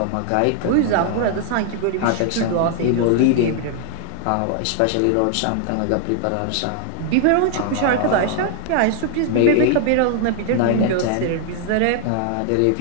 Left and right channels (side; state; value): both; different; correlation 0.00